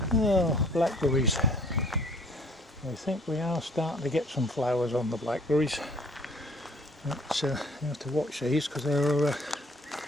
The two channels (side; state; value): both; normal; correlation 0.57